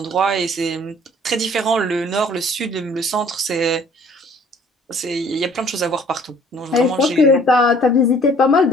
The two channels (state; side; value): normal; both; correlation 0.55